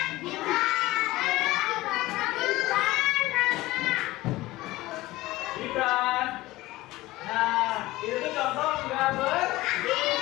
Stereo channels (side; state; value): right; quieter; 18.4 dB